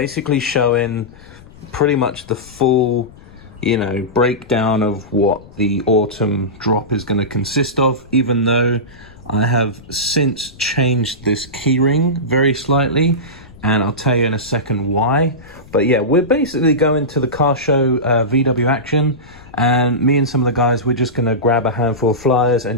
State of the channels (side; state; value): left; noise; rumble, 21 dB below the sound